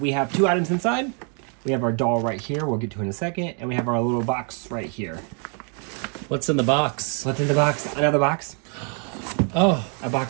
have two items inside. We have our doll right here, we'll get to in a second, and we have our little box right here. What's in the box? What's in the box? Another box. Oh, A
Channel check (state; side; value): quieter; left; 39.9 dB